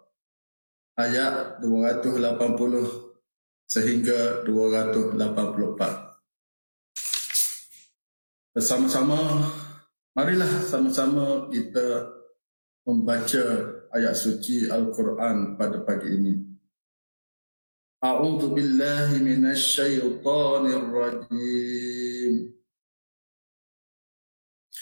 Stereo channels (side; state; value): both; inverted; correlation -1.00